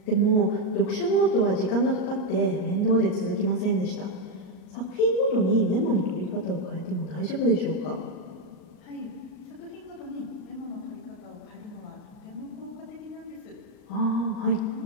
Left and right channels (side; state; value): right; late; 38 ms